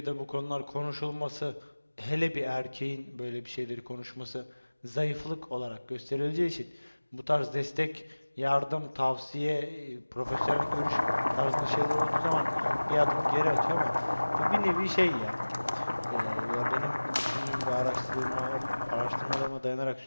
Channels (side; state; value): both; inverted; correlation -1.00